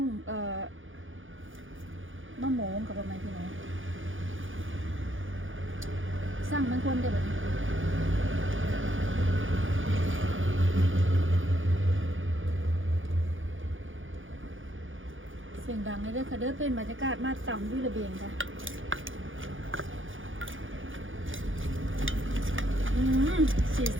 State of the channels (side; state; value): left; late; 0.58 ms